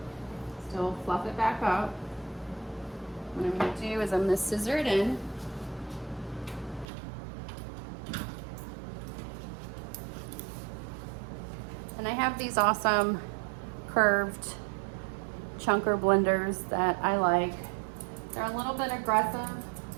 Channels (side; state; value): left; drops out; at 6.9 s